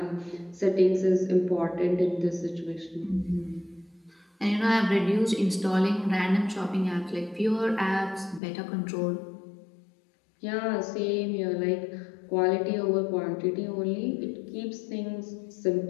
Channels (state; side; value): drops out; right; at 8.4 s